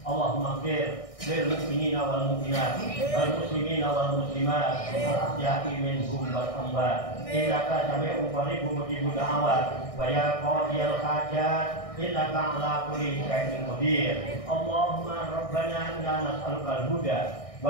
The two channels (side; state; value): right; late; 1.6 ms